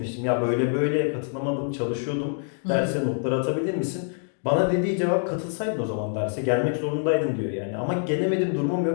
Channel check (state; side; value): silent; right; digital silence